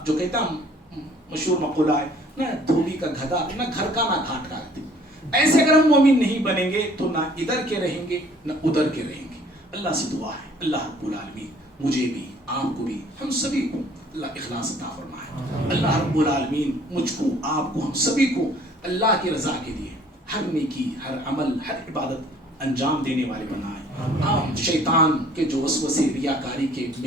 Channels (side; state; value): both; normal; correlation 0.56